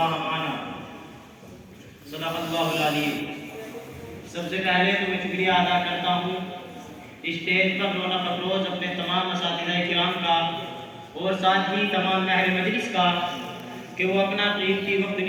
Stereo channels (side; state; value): both; identical; correlation 1.00